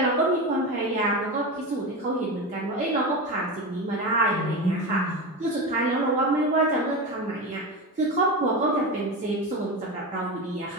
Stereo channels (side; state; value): both; normal; correlation 0.21